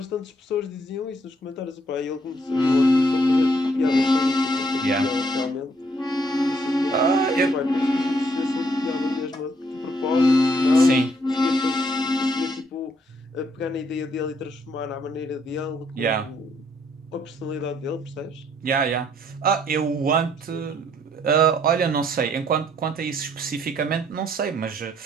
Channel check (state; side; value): normal; both; correlation 0.68